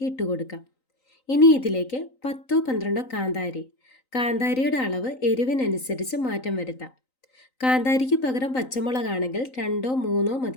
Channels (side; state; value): right; late; 3.9 ms